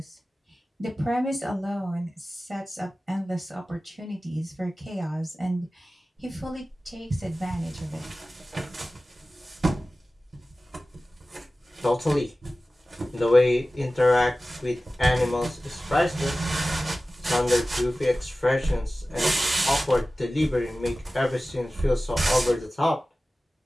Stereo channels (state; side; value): normal; both; correlation 0.96